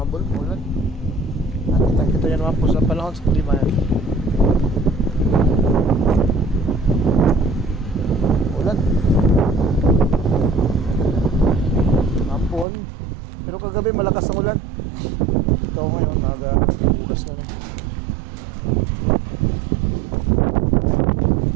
maulan. At kita yan naman po sa panahon sa klima yan. Maulan. Mampon. Pero kagabi malakas ang ulan. Ito ngayon, nag-ugas na rin.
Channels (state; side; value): drops out; left; at 12.7 s